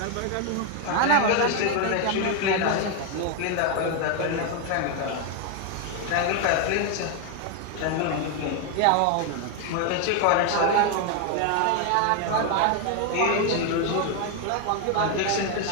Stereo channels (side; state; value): both; different; correlation 0.01